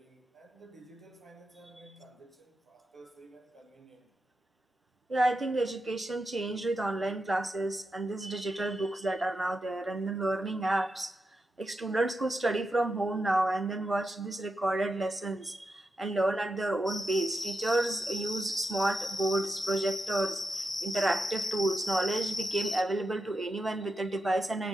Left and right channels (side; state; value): both; normal; correlation 0.87